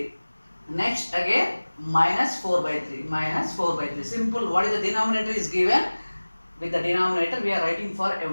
Next again minus 4 by 3. Minus 4 by 3. Simple. What is the denominator is given? With the denominator we are writing for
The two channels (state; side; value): inverted; both; correlation -1.00